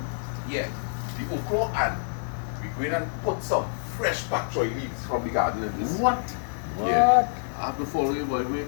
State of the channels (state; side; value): silent; right; digital silence